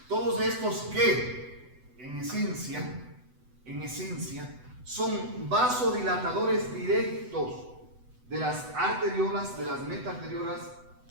todos estos que en esencia son vasodilatadores directos de las arteriolas, de las metaarteriolas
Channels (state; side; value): late; left; 8.0 ms